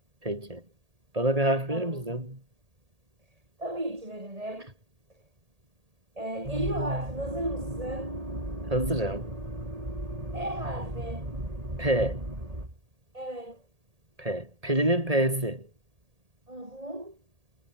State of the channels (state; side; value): late; left; 1.8 ms